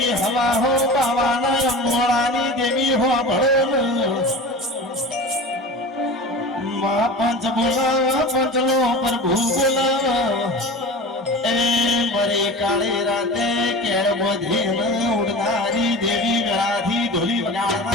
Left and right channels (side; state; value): both; normal; correlation 0.34